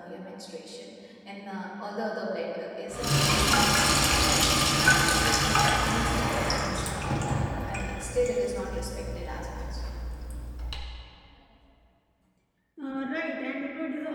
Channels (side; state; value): both; identical; correlation 1.00